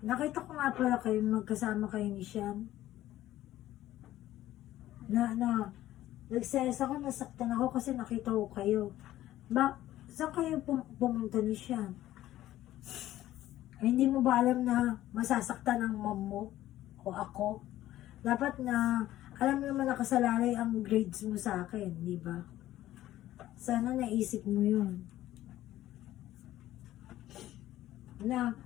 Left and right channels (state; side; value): quieter; right; 14.2 dB